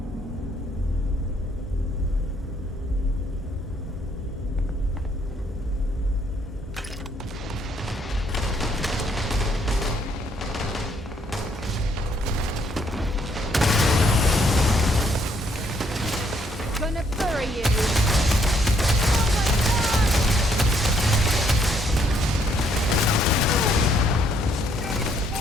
Gonna bury you!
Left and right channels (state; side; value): normal; both; correlation 0.69